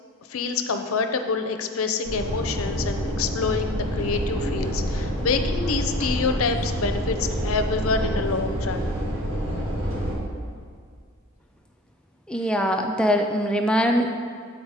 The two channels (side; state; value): both; normal; correlation 0.42